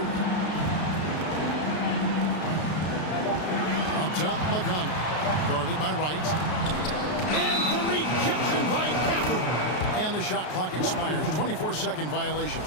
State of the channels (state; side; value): late; right; 33 ms